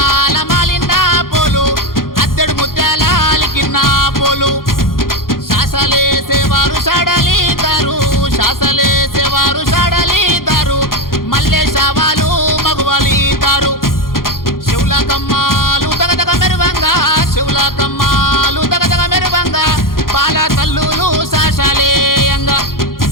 మాలిన పోలు అద్దెడు ముత్యాల అలికిన పోలు శాసలేసేవారు షాడలిదారు శాసలేసేవారు షాడలిదారు మల్లె శావాలు మగువలిదారు శివుల కమ్మాలు దగదగ మెరువంగా శివుల కమ్మాలు దగదగ మెరువంగా పాల తల్లులు శాసలేయంగా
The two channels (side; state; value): right; late; 0.91 ms